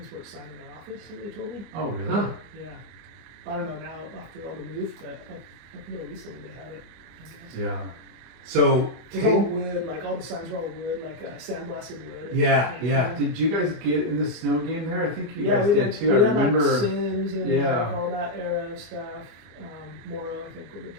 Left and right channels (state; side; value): late; left; 25 ms